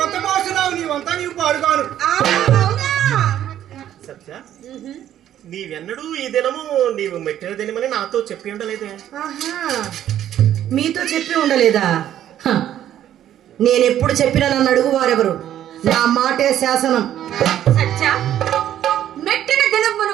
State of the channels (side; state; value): left; quieter; 11.4 dB